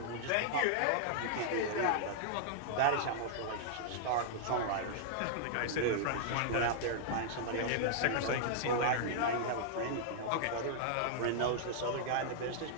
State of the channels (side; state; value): both; different; correlation -0.01